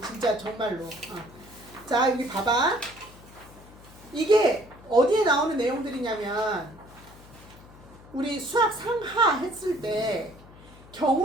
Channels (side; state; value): left; noise; hum, 21 dB below the sound